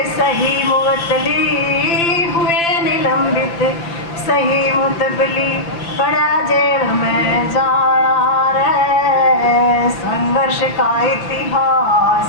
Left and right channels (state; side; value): late; right; 5.9 ms